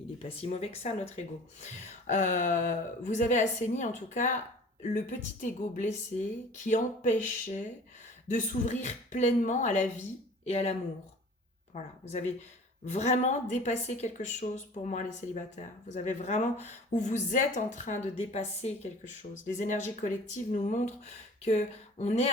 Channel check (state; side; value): normal; both; correlation 0.45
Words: n'est pas si mauvais que ça, notre ego. Vous avez assaini en tout cas le petit ego blessé qui empêchait de s'ouvrir pleinement à la vie et à l'amour. Voilà, vous avez vraiment dépasser quelque chose pour moi, les célibataires. Vous avez vraiment, ou vous êtes en train de dépasser quelque chose. Les énergies collectives nous montrent que on est